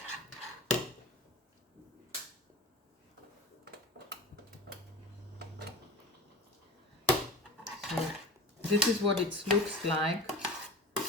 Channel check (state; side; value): normal; both; correlation 0.32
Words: So this is what it looks like